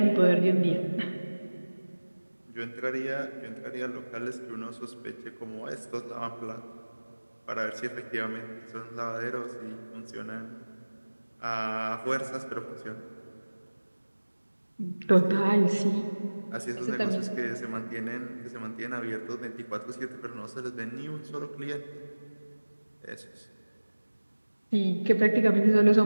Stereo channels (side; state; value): both; inverted; correlation -1.00